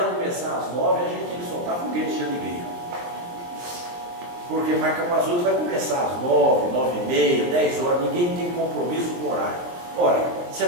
começar às 9, a gente tem que soltar foguete de alegria. Porque marca para as 8, vai começar às 9, 9h30, 10 horas, ninguém tem compromisso com o horário. Ora, se a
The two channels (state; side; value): late; left; 23 ms